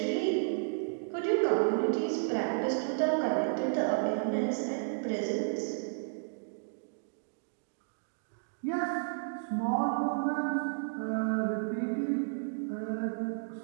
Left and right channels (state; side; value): silent; left; digital silence